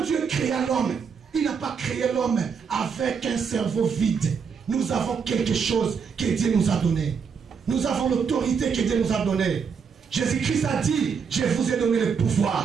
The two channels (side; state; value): left; quieter; 6.2 dB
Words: Dieu créa l'homme, il n'a pas créé l'homme avec un cerveau vide. Nous avons quelque chose que Dieu nous a donné. Nous avons l'autorité que Dieu nous a donnée. Jésus-Christ a dit, je vous ai donné le